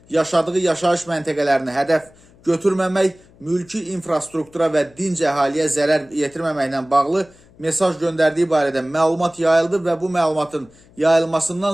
yaşadığı yaşayış məntəqələrini hədəf götürməmək, mülki infrastruktura və dinc əhaliyə zərər yetirməməklə bağlı mesaj göndərdiyi barədə məlumat yayıldı və bu məlumatın yayılmasından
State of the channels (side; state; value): left; noise; hum, 28 dB below the sound